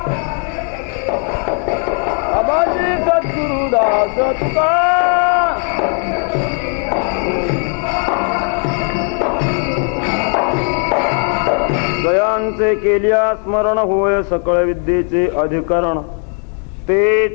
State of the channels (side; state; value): right; quieter; 38.4 dB